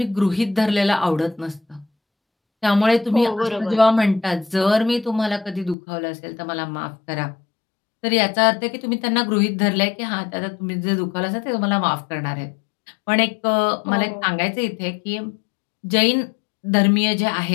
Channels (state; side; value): drops out; right; at 5.8 s